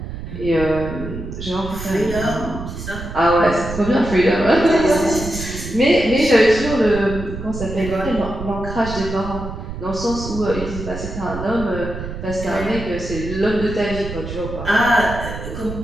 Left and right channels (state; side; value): noise; right; rumble, 8 dB below the sound